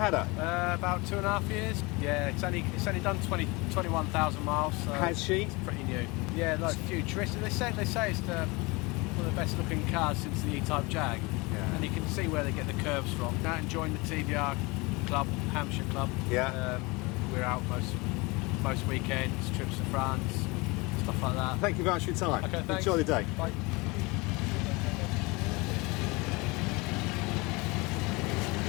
it? About 2.5 years. Yeah, it's only done 21,000 miles. So Has she? It's pretty new. Yeah, like futuristic. They say it's one of the best looking cars since the E-Type Jag. Yeah. And you can see where they get the curves from. Now enjoying the TVR club, Hampshire club. Yeah. We're out most weekends, trips to France, stuff like that. Thank you very much for your time. Okay, thanks. Enjoy the day. Bye.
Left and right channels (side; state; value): right; quieter; 25.4 dB